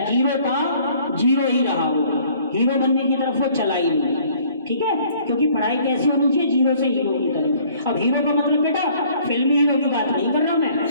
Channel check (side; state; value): both; inverted; correlation -0.57